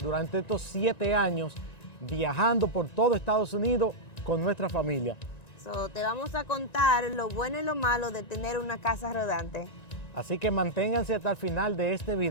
durante estos 7 años viajando por todo Estados Unidos con nuestra familia. Te vamos a contar lo bueno y lo malo de tener una casa rodante. Así que manténganse hasta el final de este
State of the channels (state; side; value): late; right; 1.9 ms